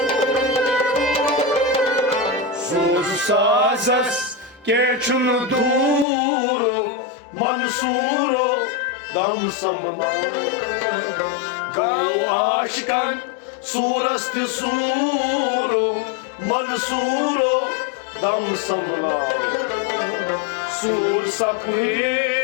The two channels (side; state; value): right; drops out; at 6.1 s